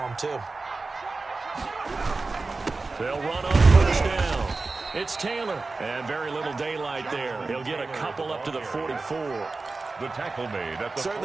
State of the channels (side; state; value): left; quieter; 3.7 dB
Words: too. They'll run on first down. It's Taylor, and very little daylight there. He'll get a couple up to the 44. The tackle made at the